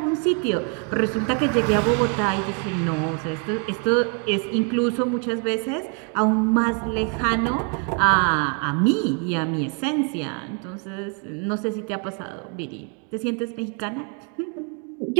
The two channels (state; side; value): quieter; left; 35.9 dB